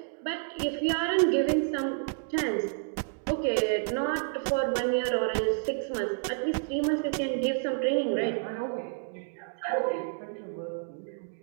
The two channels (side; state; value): left; silent; digital silence